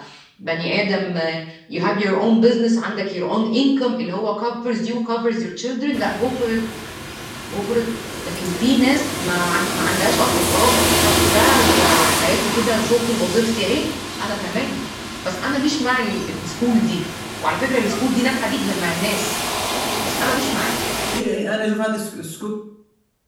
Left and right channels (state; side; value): identical; both; correlation 1.00